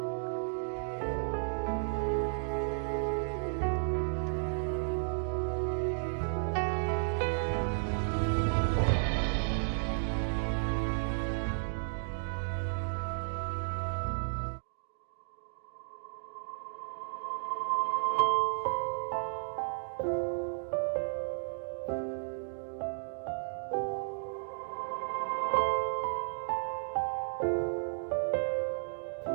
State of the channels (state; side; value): silent; left; digital silence